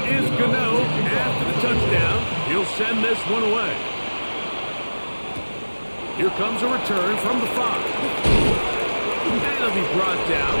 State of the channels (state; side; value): inverted; both; correlation -1.00